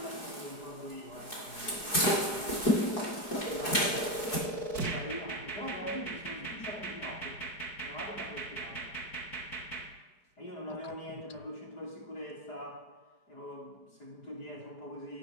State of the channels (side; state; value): right; late; 4.7 ms